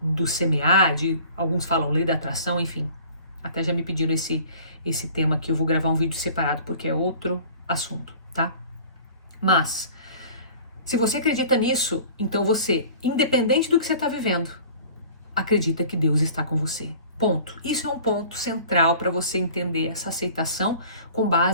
do semear, alguns falam lei da atração, enfim. Até já me pediram esse tema aqui, eu vou gravar um vídeo separado porque é outro assunto, tá? Mas, se você acredita nisso, então você, independente do que você está vivendo, acredita que Deus está com você. Ponto. Isso é um ponto central para você entender essa aceitação com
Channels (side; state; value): both; inverted; correlation -0.46